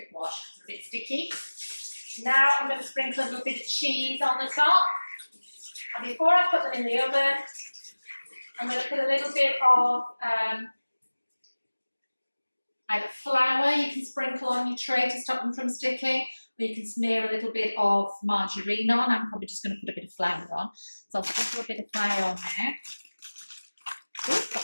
wash because it's a bit sticky. Now I'm going to sprinkle a little bit of cheese on the top. And before I put them in the oven, I'm going to put a little bit of either flour you can sprinkle on your tray to stop them from sticking, or you can smear a little bit of margarine on. I'm probably just going to put a bit of flour on. So I'll sprinkle a bit of flour on there.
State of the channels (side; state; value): both; inverted; correlation -1.00